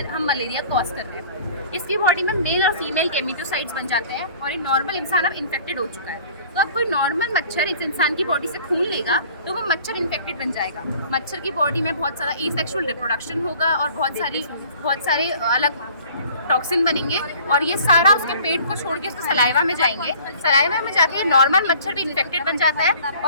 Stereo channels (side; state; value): both; inverted; correlation -0.50